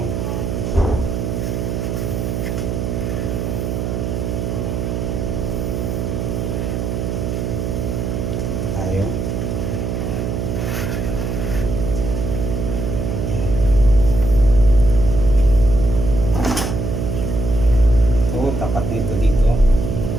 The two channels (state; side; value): noise; right; hum, 2 dB below the sound